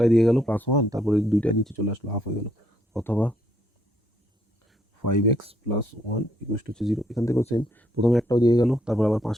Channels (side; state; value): both; normal; correlation 0.71